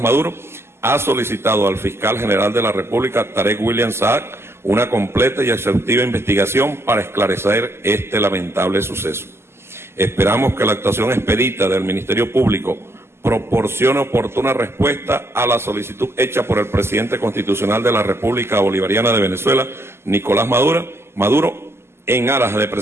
Maduro ha solicitado al fiscal general de la República, Tarek William Saab, una completa y exhaustiva investigación para esclarecer este lamentable suceso. Esperamos que la actuación expedita del Ministerio Público proporcione oportuna respuesta a la solicitud hecha por el presidente constitucional de la República Bolivariana de Venezuela, Nicolás Maduro, en aras de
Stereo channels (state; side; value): late; left; 0.12 ms